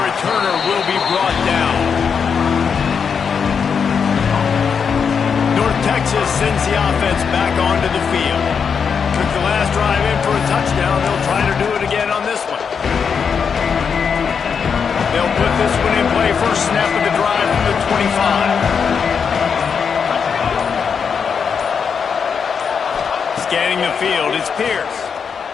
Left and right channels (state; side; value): quieter; right; 6.4 dB